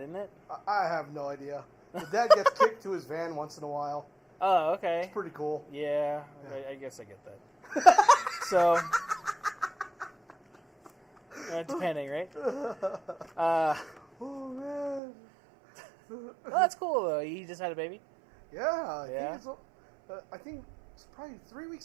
isn't it? I have no idea. The dad gets kicked to his van once in a while. Oh, okay. It's pretty cool. Yeah. I guess I get that. So, depending, right? Oh, man. Oh, that's cool, though. He just had a baby? Yeah. I think it's probably 3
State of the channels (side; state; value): left; drops out; at 15.0 s